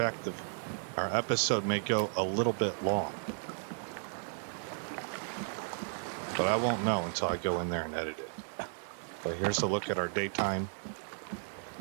our episode may go a little bit long. But I won't know until I go in there and edit it. But here's a look at our daytime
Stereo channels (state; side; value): silent; left; digital silence